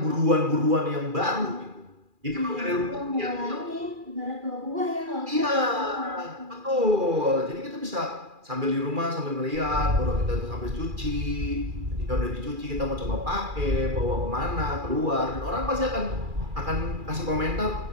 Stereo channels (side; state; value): left; late; 2.4 ms